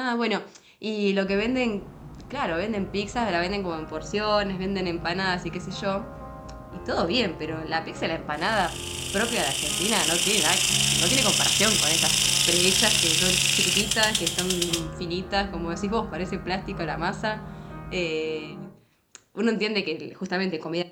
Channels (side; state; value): both; identical; correlation 1.00